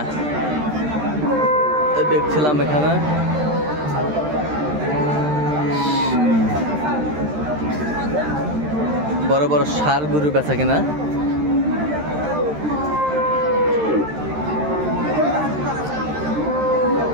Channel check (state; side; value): late; left; 13 ms